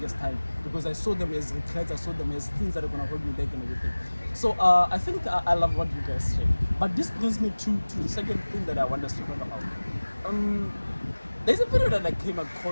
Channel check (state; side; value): inverted; both; correlation -1.00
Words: time, because I saw them as regrets, I saw them as things that are gonna hold me back and everything. So I think I love what you guys say. But this brings me to the second thing that I want us to talk about. There's a video that I came